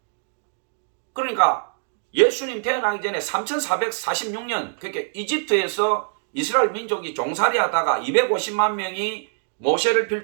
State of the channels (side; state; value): left; silent; digital silence